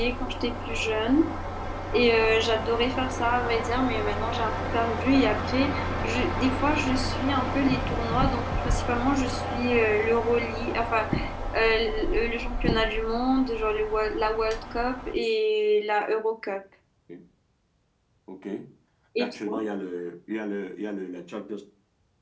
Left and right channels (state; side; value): identical; both; correlation 1.00